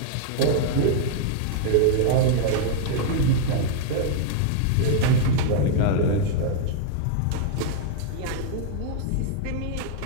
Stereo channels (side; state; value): both; different; correlation -0.01